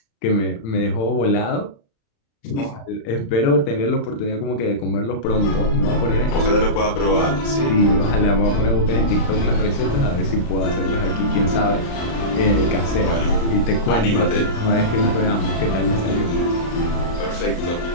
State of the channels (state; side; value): late; right; 35 ms